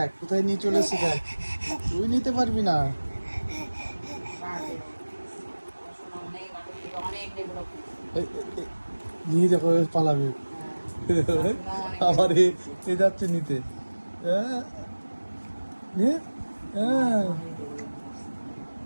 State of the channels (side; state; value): both; inverted; correlation -1.00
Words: কোথায় নিয়ে চলে এসে দেখ, তুই নিতে পারবি না। এই, এই, নিয়ে দেখো পালাবে, আবার এ যাচ্ছে নিতে। হ্যাঁ হ্যাঁ